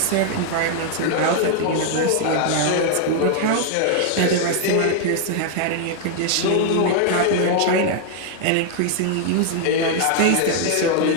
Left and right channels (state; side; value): different; both; correlation 0.00